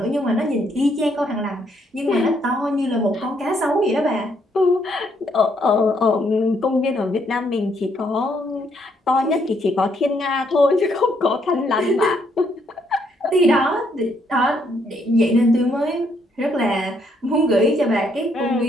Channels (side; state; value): both; normal; correlation 0.72